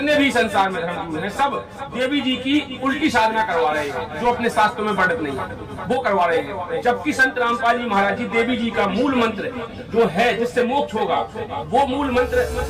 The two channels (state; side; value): identical; both; correlation 1.00